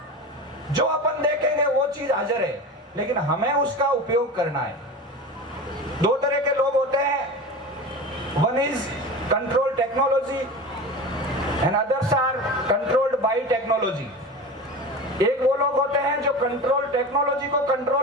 जो अपन देखेंगे वो चीज हाजिर है, लेकिन हमें उसका उपयोग करना है। दो तरह के लोग होते हैं, one is control technology and others are controlled by technology. एक वो लोग होते हैं जो कंट्रोल टेक्नोलॉजी को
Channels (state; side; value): normal; both; correlation 0.30